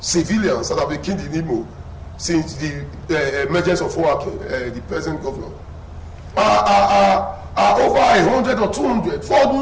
that have been killed in Imo since the emergence of Owake, the present governor, are over 100 or 200 for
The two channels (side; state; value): both; identical; correlation 1.00